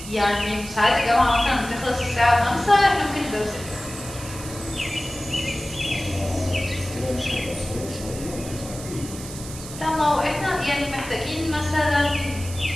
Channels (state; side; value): noise; right; hiss, 12 dB below the sound